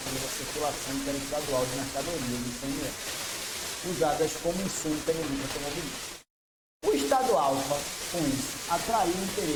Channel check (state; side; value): identical; both; correlation 1.00